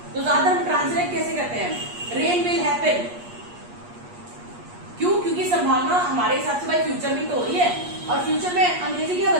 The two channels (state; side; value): late; left; 8.4 ms